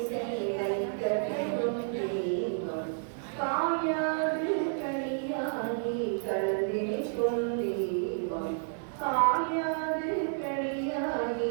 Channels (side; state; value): left; silent; digital silence